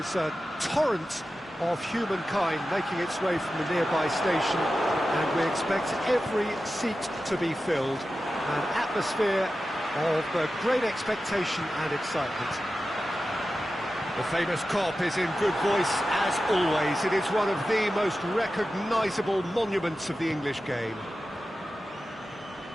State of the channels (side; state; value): both; normal; correlation 0.93